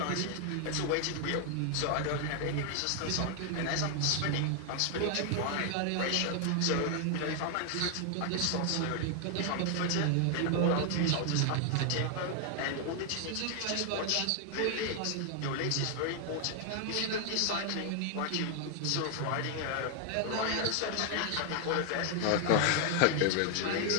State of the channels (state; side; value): different; both; correlation 0.00